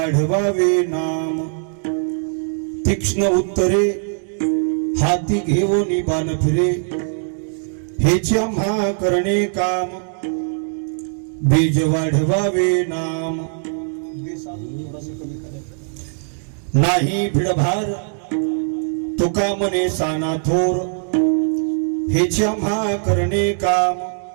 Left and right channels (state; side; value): silent; left; digital silence